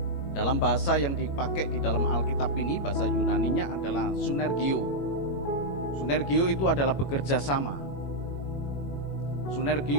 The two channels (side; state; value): right; late; 21 ms